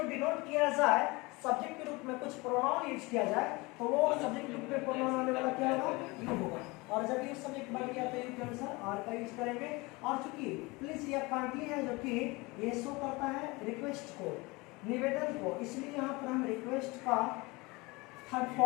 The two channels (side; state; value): right; quieter; 24.3 dB